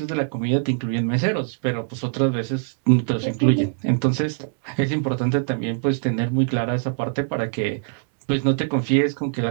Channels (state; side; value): silent; left; 64 dB below the other